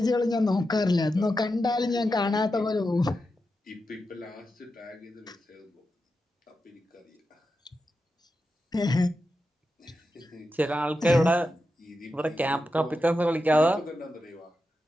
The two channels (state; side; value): normal; both; correlation 0.89